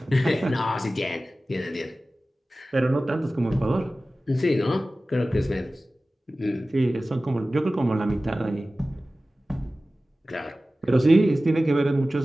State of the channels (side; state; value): both; normal; correlation 0.96